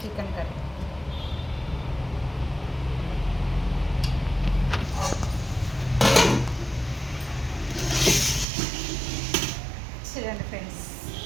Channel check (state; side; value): drops out; left; at 8.5 s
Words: కర్రీ. చూడండి ఫ్రెండ్స్,